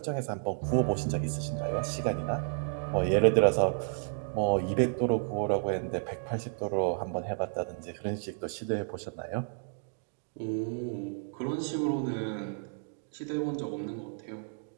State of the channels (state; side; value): silent; left; digital silence